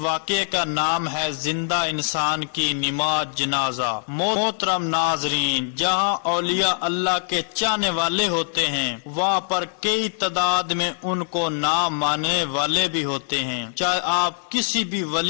واقعے کا نام ہے زندہ انسان کی نماز جنازہ۔ محترم ناظرین، جہاں اولیاء اللہ کے چاہنے والے ہوتے ہیں، وہاں پر کئی تعداد میں ان کو نہ ماننے والے بھی ہوتے ہیں۔ چاہے آپ کسی بھی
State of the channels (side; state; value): right; silent; digital silence